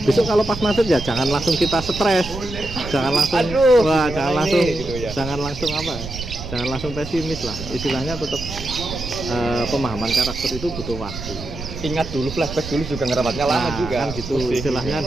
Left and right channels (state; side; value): noise; right; rumble, 10 dB below the sound